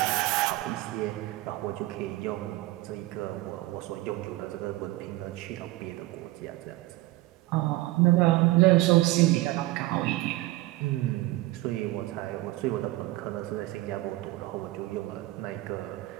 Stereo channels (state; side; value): quieter; left; 18.4 dB